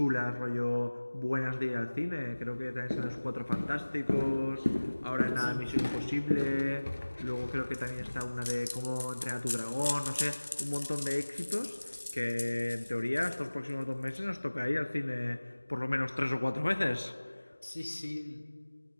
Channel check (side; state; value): both; inverted; correlation -1.00